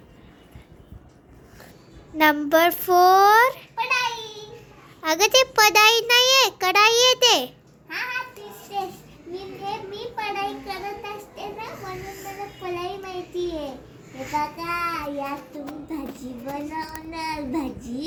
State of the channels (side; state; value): both; identical; correlation 1.00